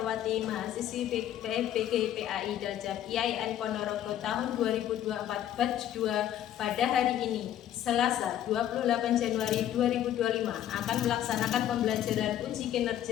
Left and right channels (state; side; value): quieter; right; 11.4 dB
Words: mahasiswi PFPG PAI Daljab IAIN Ponorogo tahun 2024 batch 2 pada hari ini, Selasa 28 Januari 2025 akan melaksanakan pembelajaran uji